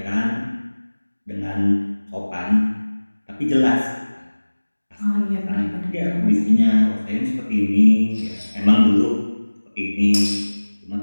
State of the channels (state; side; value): inverted; both; correlation -1.00